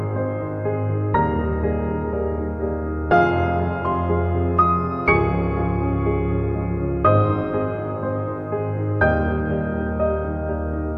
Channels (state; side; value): identical; both; correlation 1.00